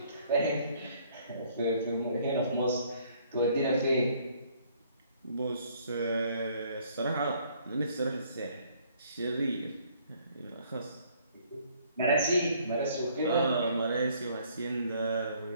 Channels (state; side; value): inverted; both; correlation -0.62